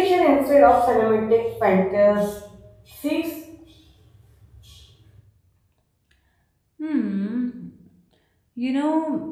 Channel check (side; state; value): both; identical; correlation 1.00